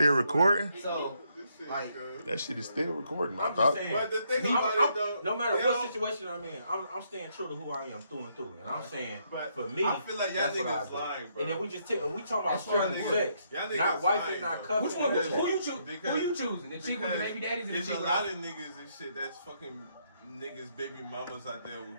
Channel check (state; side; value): inverted; both; correlation -0.74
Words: recording. So, like, That shit is still recording. I I'm thought. just saying. But the thing about it though, No matter they what don't- situation I'm in, I'm staying true to who I am through and through. And I'm saying, But for me, I feel like y'all that's what I niggas do. lying, bro. And then we talking about That's strictly y'all sex, Y'all niggas not wifing, lying, not though. cuffing. which one? and Who you that choose? Because- Who you choosing? The chick with the baby daddies or the there's chick a with lot of niggas and shit that's fucking niggas, baby mamas out there